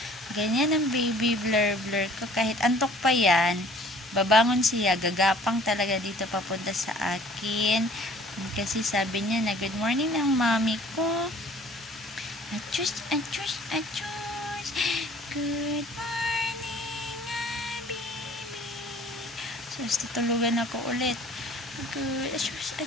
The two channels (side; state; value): both; normal; correlation 0.52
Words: Ganyan ang baby blur ko. Kahit antok pa yan, babangon siya, gagapang talaga dito papunta sa akin. Kasi sabi niya na good morning ng mami ko. Achus, achus, achus. Good morning, baby. So, tutulugan ako ulit. Good, achus,